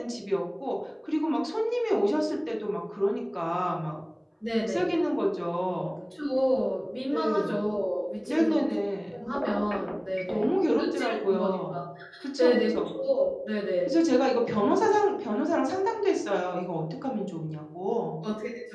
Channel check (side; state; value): both; identical; correlation 1.00